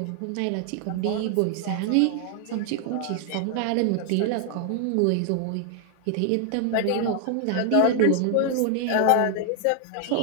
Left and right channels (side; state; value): both; different; correlation 0.00